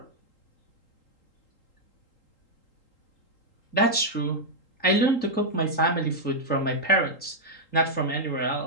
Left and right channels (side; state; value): right; late; 3.8 ms